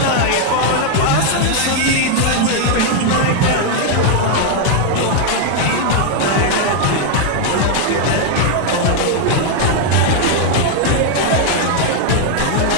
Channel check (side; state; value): both; different; correlation 0.00